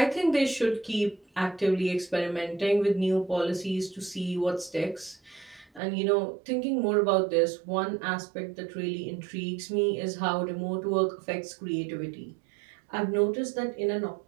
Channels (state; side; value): drops out; left; at 5.8 s